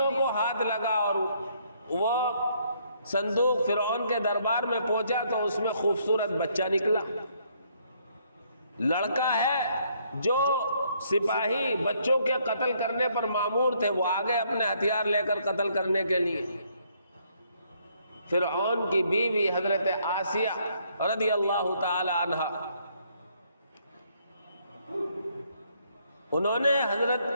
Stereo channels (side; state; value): both; inverted; correlation -0.69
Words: کو ہاتھ لگا، اور وہ صندوق فرعون کے دربار میں پہنچا تو اس میں خوبصورت بچہ نکلا، لڑکا ہے جو سپاہی بچوں کے قتل کرنے پر مامور تھے، وہ آگے اپنے ہتھیار لے کر قتل کرنے کے لیے۔ فرعون کی بیوی حضرت آسیہ رضی اللہ تعالی عنہا، انہوں نے